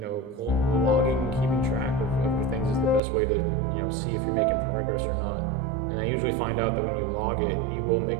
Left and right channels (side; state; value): left; drops out; at 3.0 s